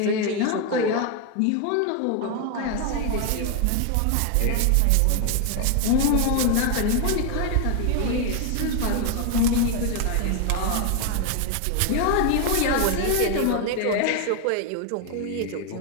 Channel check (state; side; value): different; both; correlation 0.01